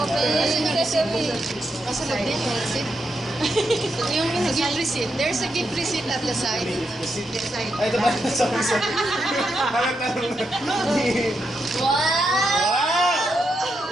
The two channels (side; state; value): both; normal; correlation 0.83